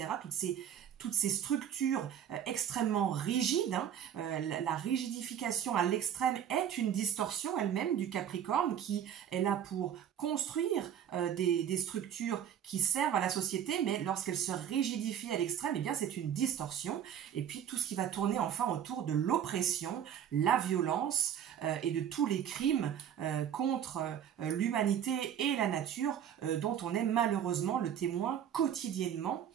Toutes ces structures extrêmement rigides, la rigidification à l'extrême est une distorsion elle-même du Capricorne qui est là pour construire des structures qui servent à la société, mais lorsqu'elle se rigidifie à l'extrême, eh bien c'est une distorsion. Et puis tout ce qui va tourner enfin autour de l'oppression, la violence et de tous les crimes contre l'humanité et la nature dont on est malheureusement le témoin quotidiennement,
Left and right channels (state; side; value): quieter; left; 9.4 dB